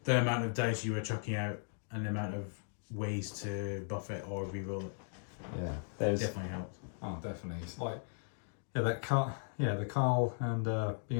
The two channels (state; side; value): silent; right; digital silence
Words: the amount of dice you were chucking out and the amount of ways to buff it or reroll it. Yeah, there's definitely helped. Oh, definitely. It's like the Carl and